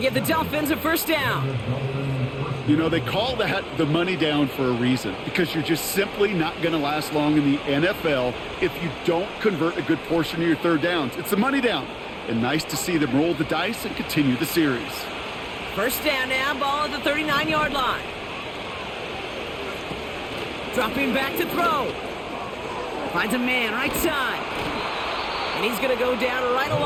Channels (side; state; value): both; identical; correlation 1.00